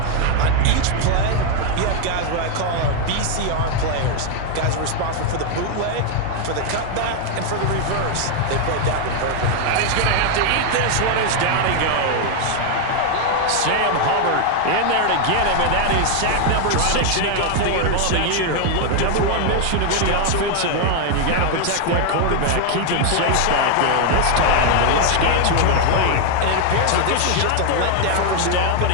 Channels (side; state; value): both; different; correlation 0.00